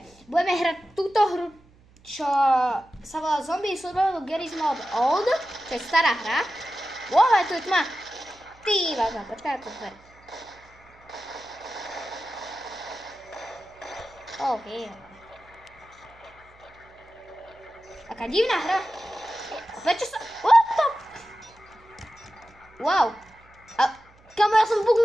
budeme hrať túto hru, čo sa volá Zombie Survival Garry's Mod Old, čo je stará hra. Wow, tu je tma. Ty vážna, počkaj, to dver. OK. Taká divná hra. A prečo sa... What the... Wow. A kamo, ja som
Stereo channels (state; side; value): noise; right; hum, 28 dB below the sound